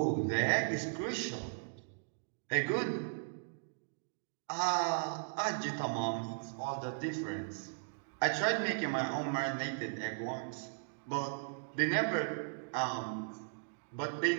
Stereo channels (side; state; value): left; silent; digital silence